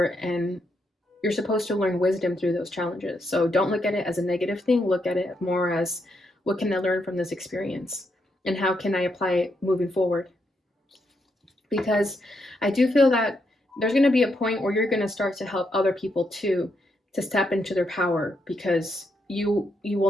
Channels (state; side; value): normal; both; correlation 0.80